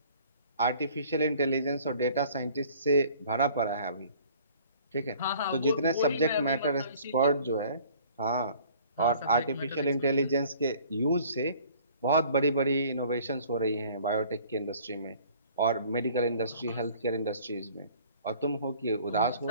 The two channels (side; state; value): both; inverted; correlation -0.53